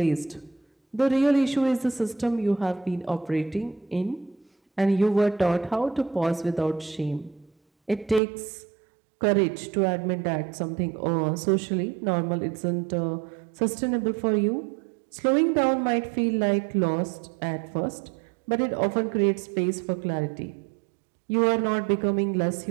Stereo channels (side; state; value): left; drops out; at 8.2 s